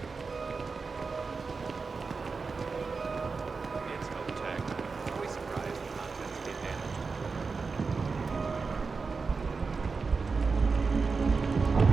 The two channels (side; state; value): left; quieter; 4.6 dB